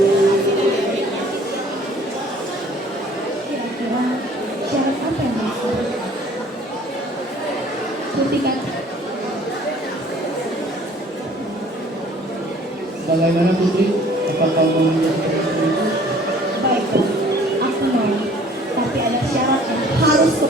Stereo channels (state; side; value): normal; both; correlation 0.53